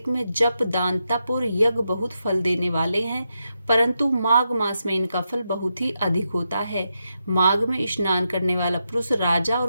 में जप, दान, तप और यज्ञ बहुत फल देने वाले हैं, परंतु माघ मास में इनका फल बहुत ही अधिक होता है। माघ में स्नान करने वाला पुरुष राजा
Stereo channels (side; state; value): both; inverted; correlation -0.85